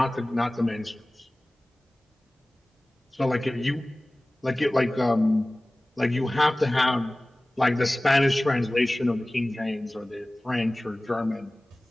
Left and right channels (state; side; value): normal; both; correlation 0.98